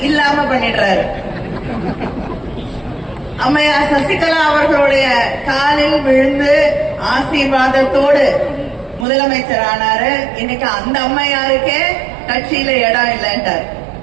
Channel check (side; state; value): left; drops out; at 9.1 s